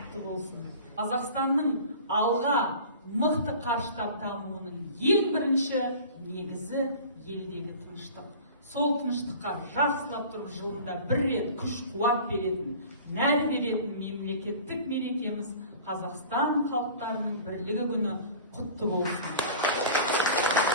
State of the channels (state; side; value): inverted; both; correlation -0.41